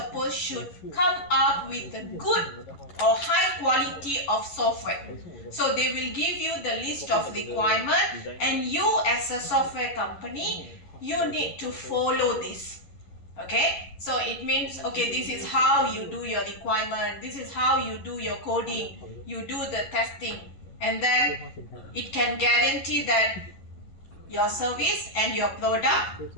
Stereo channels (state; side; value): late; right; 11 ms